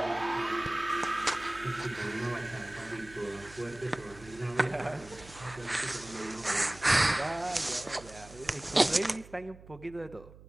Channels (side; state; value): right; noise; hum, 19 dB below the sound